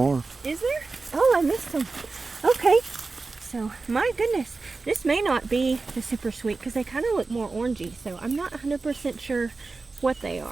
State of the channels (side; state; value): left; quieter; 3.9 dB